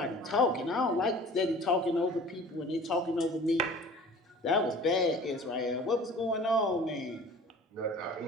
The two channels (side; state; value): both; normal; correlation 0.44